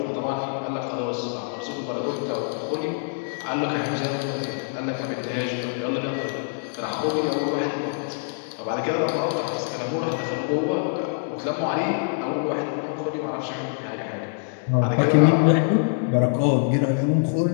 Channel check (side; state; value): right; silent; 62 dB below the other